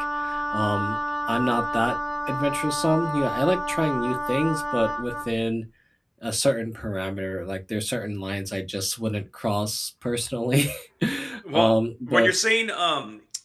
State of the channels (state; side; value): identical; both; correlation 1.00